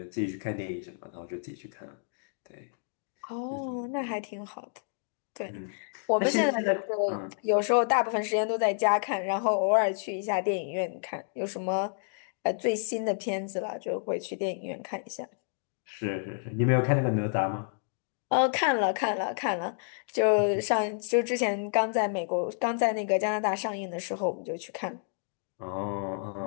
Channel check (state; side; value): silent; right; digital silence